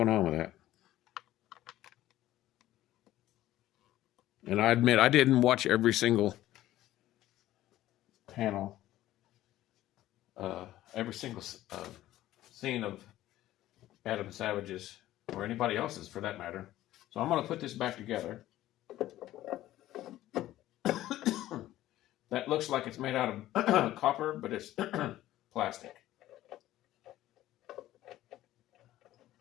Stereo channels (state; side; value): quieter; right; 14.5 dB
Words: on with that. And I admit I didn't watch every single panel, every single scene of Adam Savage's, or anybody else's for that matter. So I'm going to put this back together. That looks like it's made out of copper, but it's plastic.